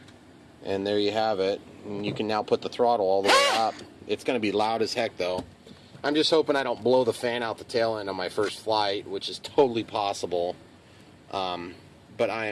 and there you have it. And you can now put the throttle all the way up. It's going to be loud as heck though. I'm just hoping I don't blow the fan out the tail end on my first flight, which is totally possible. But I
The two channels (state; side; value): identical; both; correlation 1.00